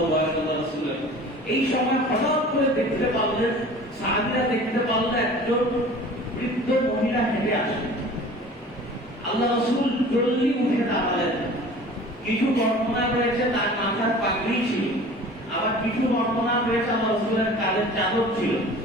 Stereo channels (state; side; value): normal; both; correlation 0.43